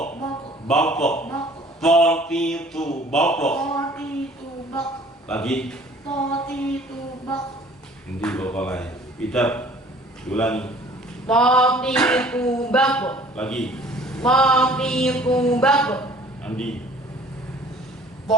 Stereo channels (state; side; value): normal; both; correlation 0.52